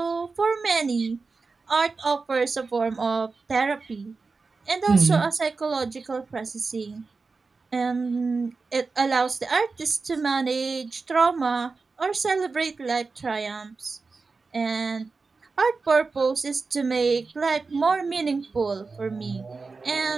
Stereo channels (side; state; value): left; quieter; 4.2 dB